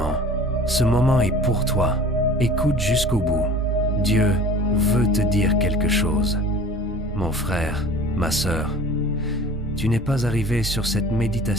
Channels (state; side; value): normal; both; correlation 0.43